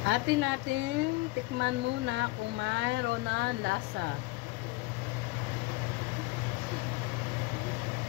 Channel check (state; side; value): quieter; right; 22.4 dB